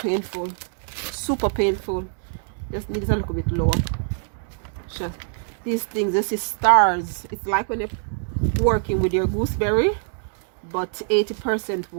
super painful. Just need it a little bit lower. Just these things, this is stars. It's like when you're working with your gooseberry, but 80%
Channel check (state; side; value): silent; left; 63 dB below the other